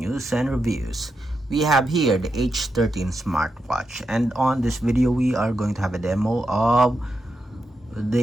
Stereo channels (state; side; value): normal; both; correlation 0.86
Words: and reviews. We have here the H13 Smartwatch, and on this video we are going to have a demo of